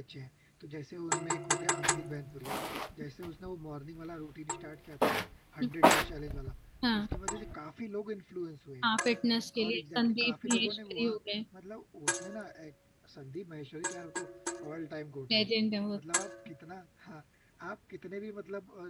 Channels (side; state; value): both; identical; correlation 1.00